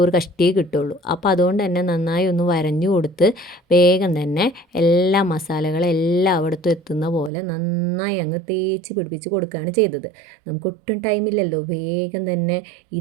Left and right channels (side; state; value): left; drops out; at 7.3 s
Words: കഷ്ടിയേ കിട്ടുള്ളൂ. അപ്പോൾ അതുകൊണ്ട് തന്നെ നന്നായി ഒന്ന് വരഞ്ഞു കൊടുത്ത് വേഗം തന്നെ എല്ലാ മസാലകളും എല്ലാം അവിടുത്തെ എത്തുന്ന പോലെ നന്നായി അങ്ങ് തേച്ച് പിടിപ്പിച്ച് കൊടുക്കുകയാണ് ചെയ്തത്. നമുക്ക് ഒട്ടും ടൈമില്ലല്ലോ. വേഗം തന്നെ